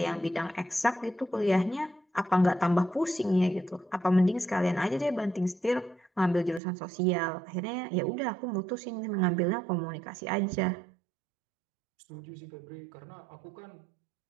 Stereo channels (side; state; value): left; drops out; at 6.6 s